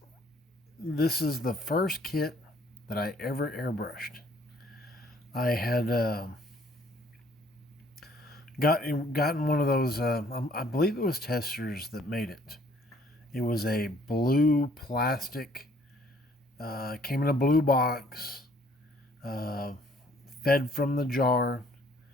this is the first kit that I ever airbrushed. I had gotten one of those. I believe it was Testers that made it. It was a blue plastic. Came in a blue box. Uh, Fed from the jar.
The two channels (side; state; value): both; normal; correlation 0.60